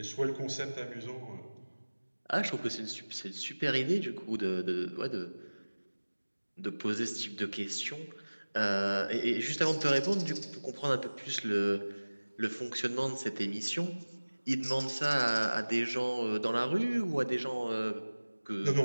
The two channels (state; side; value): inverted; both; correlation -1.00